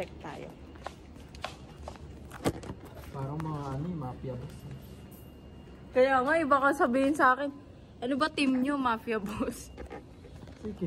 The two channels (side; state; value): both; identical; correlation 1.00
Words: tayo. Parang mga ano yung mafia boss. Kaya nga, iba ka sabihin sa akin. Ano ba team nyo, mafia boss?